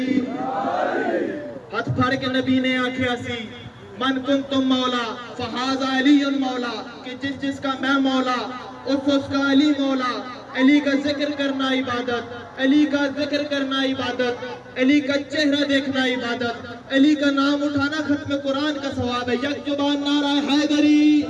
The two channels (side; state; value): both; identical; correlation 1.00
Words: ہاتھ پھاڑ کے نبی نے آنکھیں سی، من کنتم مولا فہذا علی مولا، کہ جس کا میں مولا اس کا علی مولا۔ علی کا ذکر کرنا عبادت، علی کا ذکر کرنا عبادت، علی کا چہرہ دیکھنا عبادت، علی کا نام اٹھانا ختم قرآن کا ثواب ہے۔ یک زبان نعرہ حیدری۔